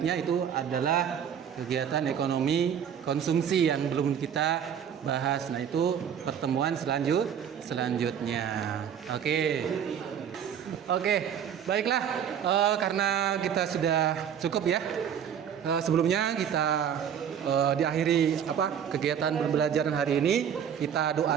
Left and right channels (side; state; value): left; quieter; 8.5 dB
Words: itu adalah kegiatan ekonomi konsumsi yang belum kita bahas. Nah, itu pertemuan selanjutnya. Oke, baiklah, karena kita sudah cukup ya sebelumnya kita diakhiri kegiatan pembelajaran hari ini, kita doa